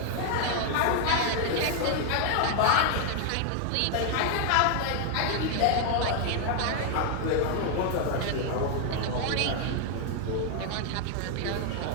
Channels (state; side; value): different; both; correlation 0.00